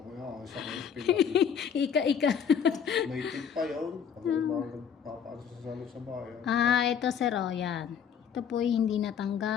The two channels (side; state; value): right; quieter; 7.6 dB